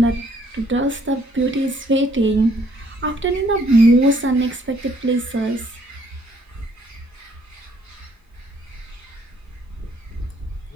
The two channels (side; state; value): both; normal; correlation 0.65